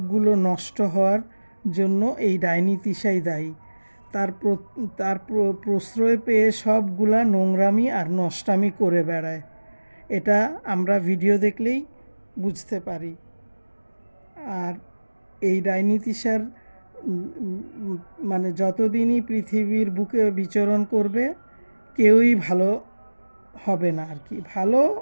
নষ্ট হওয়ার জন্য এই ডাইনি তিশাই দায়ী। তার প্রশ্রয় পেয়ে সবগুলা নোংরামি আর নষ্টামি করে বেড়ায়, এটা আমরা ভিডিও দেখলেই বুঝতে পারি। আর এই ডাইনি তিশার মানে যতদিনই পৃথিবীর বুকে বিচরণ করবে কেউই ভালো হবে না আর কি, ভালো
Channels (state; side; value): inverted; both; correlation -1.00